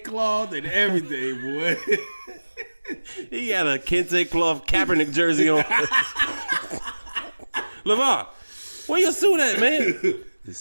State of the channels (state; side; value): inverted; both; correlation -1.00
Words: cloth and everything, boy. He got a kente cloth Kaepernick jersey on. LeVar, where your suit at, man?